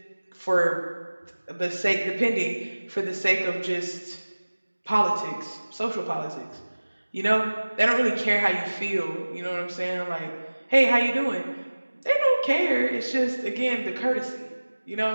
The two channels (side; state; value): both; inverted; correlation -1.00